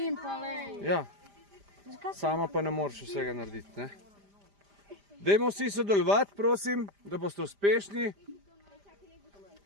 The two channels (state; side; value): late; left; 5.0 ms